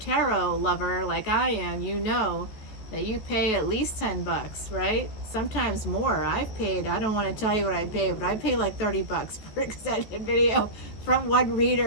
lover like I am, you know that you pay at least $10, right? Sometimes more. I've paid, I don't want to tell you what I paid, but I pay like $30 for an extended video from one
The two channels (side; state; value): right; late; 14 ms